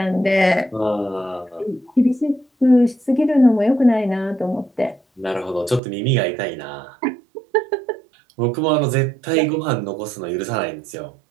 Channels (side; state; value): left; drops out; at 5.8 s